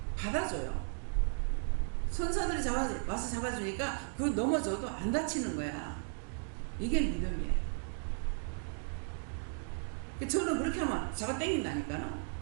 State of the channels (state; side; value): silent; left; 54 dB below the other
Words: 받아줘요. 천사들이 와서 잡아주니까 그 넘어져도 안 다치는 거야. 이게 믿음이에요. 저는 그렇게 하면 잡아 당긴다니까요.